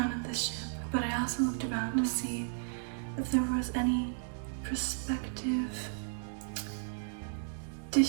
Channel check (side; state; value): left; silent; digital silence